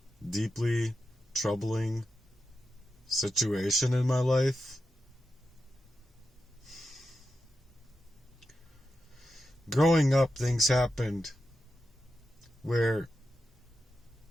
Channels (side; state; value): both; normal; correlation 0.89